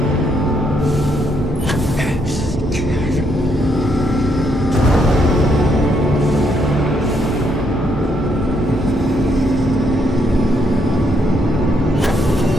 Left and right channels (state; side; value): normal; both; correlation 0.74